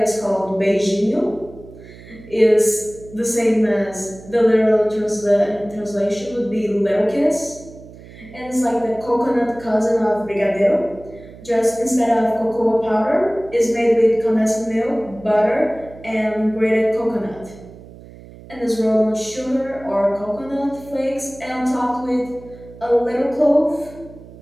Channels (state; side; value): noise; right; hum, 19 dB below the sound